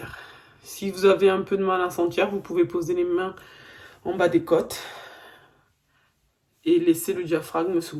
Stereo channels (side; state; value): both; identical; correlation 1.00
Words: Si vous avez un peu de mal à sentir, vous pouvez poser les mains en bas des côtes et laisser le diaphragme se